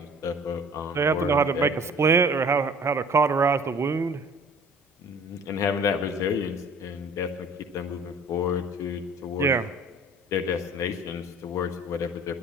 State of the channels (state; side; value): normal; both; correlation 0.49